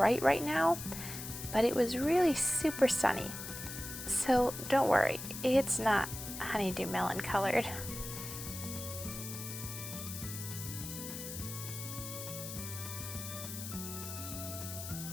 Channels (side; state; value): left; noise; hiss, 8 dB below the sound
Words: right now, but it was really super sunny. So don't worry, it's not honeydew melon colored.